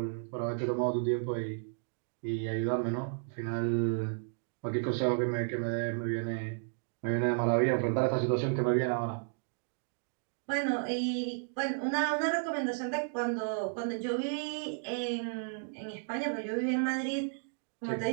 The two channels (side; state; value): left; silent; digital silence